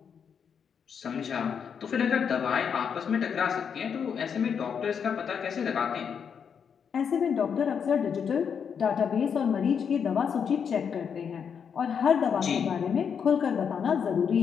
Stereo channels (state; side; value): quieter; right; 7.1 dB